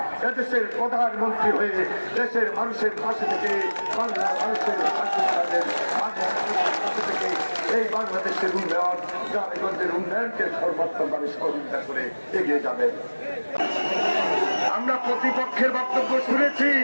এদেশের প্রধানমন্ত্রী হয়ে দেশের মানুষের পাশে থেকে বাংলার মানুষের পাশে থেকে এই বাংলাদেশের উন্নয়ন, গ্রামগঞ্জের উন্নয়নকে সর্বোত্তমভাবে সহযোগিতা করে এগিয়ে যাবেন। আমরা প্রতিপক্ষের বক্তব্য শুনেছি,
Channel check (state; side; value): inverted; both; correlation -1.00